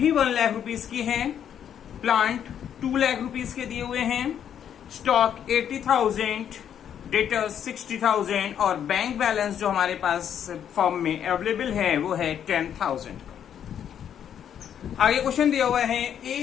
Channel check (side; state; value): right; quieter; 9.1 dB